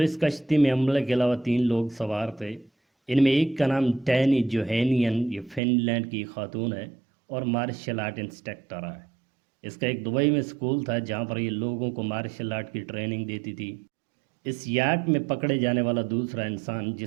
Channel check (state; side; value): drops out; left; at 5.6 s